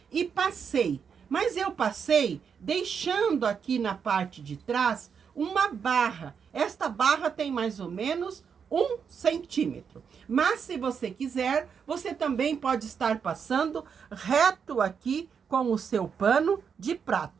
E passei, mas eu passei deixando aqui na parte de trás uma barra. Esta barra tem mais ou menos 1 centímetro. Mas se você quiser, você também pode estar passando reto aqui com o seu pano de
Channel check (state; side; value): quieter; left; 6.8 dB